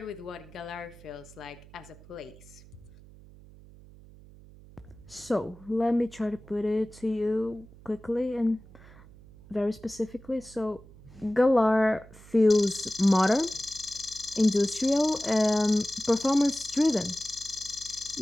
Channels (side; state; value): right; noise; hum, 21 dB below the sound